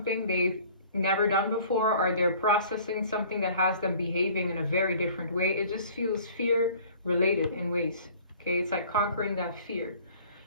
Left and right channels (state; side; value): inverted; both; correlation -0.50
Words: they've never done before, or they're processing something that has them behaving in a very different way. It just feels fear related in ways. Okay, it's like conquering that fear.